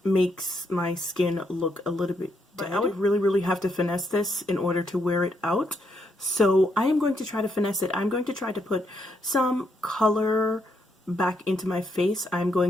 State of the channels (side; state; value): both; normal; correlation 0.77